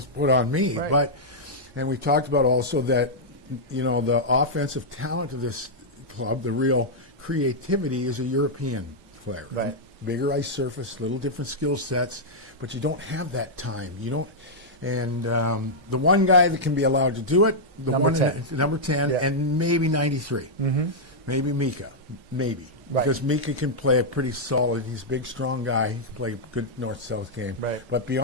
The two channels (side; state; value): left; late; 1.1 ms